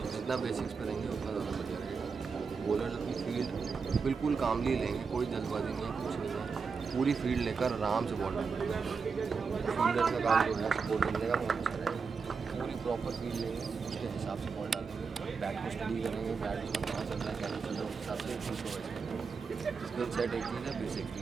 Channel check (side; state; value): left; quieter; 5.3 dB